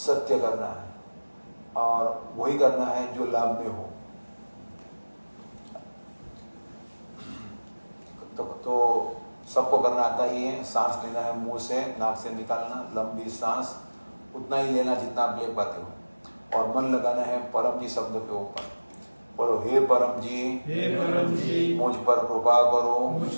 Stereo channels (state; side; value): inverted; both; correlation -1.00